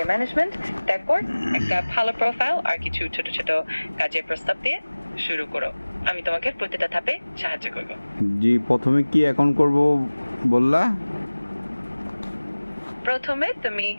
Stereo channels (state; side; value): inverted; both; correlation -1.00